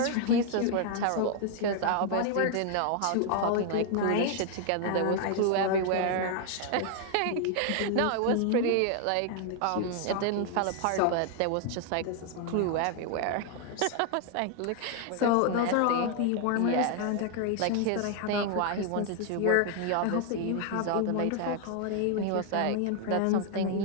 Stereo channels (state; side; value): different; both; correlation 0.00